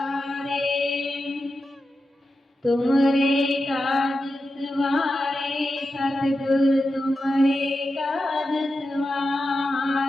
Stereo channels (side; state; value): both; normal; correlation 0.90